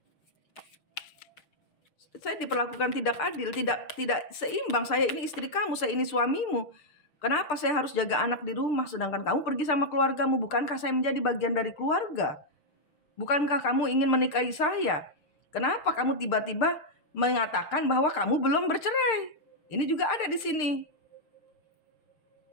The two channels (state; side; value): late; right; 6.7 ms